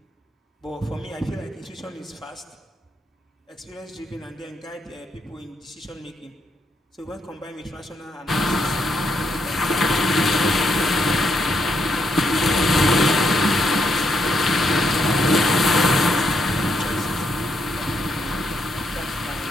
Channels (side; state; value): both; normal; correlation 0.77